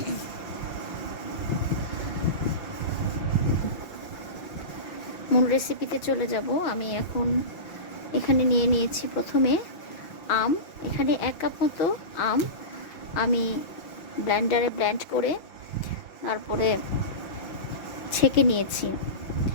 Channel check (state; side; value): late; right; 5.9 ms